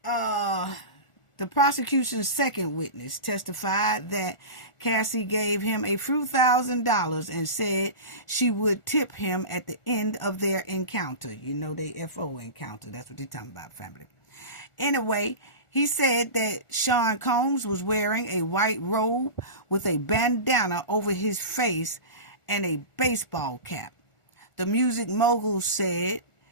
The prosecution's second witness testified that Cassie gave him a few $1,000s and said she would tip him at the end of their encounter. You know, they FO encounter. That's what they're talking about, family. Anyway, he said that Sean Combs was wearing a white robe with a bandana over his face and a baseball cap. The music mogul said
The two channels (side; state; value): right; late; 1.4 ms